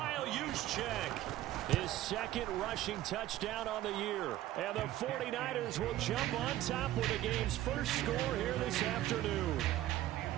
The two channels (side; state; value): left; quieter; 14.2 dB